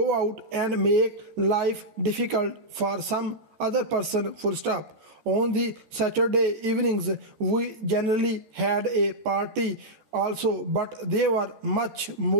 out and make life difficult for some other person. Full stop. On the Saturday evenings, we generally had a party also, but they were much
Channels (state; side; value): late; left; 13 ms